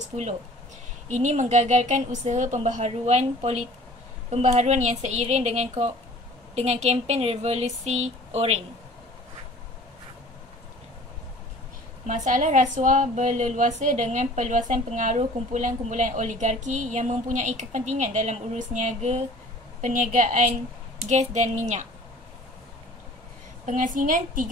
Ini menggagalkan usaha pembaharuan yang seiring dengan kempen revolusi Orange. Masalah rasuah berleluasa dengan perluasan pengaruh kumpulan-kumpulan oligarki yang mempunyai kepentingan dalam urus perniagaan gas dan minyak. Pengasingan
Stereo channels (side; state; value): both; normal; correlation 0.48